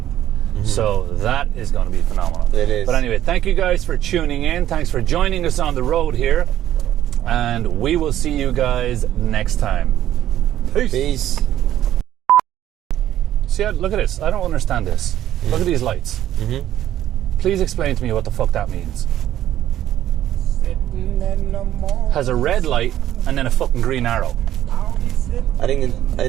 So that is going to be phenomenal. It is. But anyway, thank you guys for tuning in. Thanks for joining us on the road here. And we will see you guys next time. Peace. See, look at this. I don't understand this. Look at these lights. Please explain to me what the fuck that means. Has a red light and then a fucking green arrow. I think it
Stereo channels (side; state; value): left; quieter; 12.2 dB